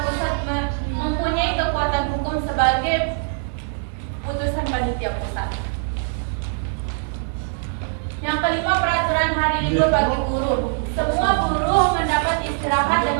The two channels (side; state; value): left; silent; 62 dB below the other